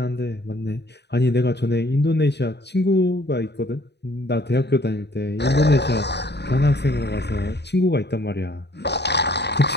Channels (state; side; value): late; right; 0.49 ms